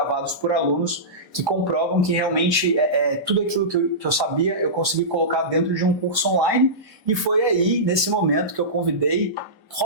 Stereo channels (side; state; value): both; normal; correlation -0.18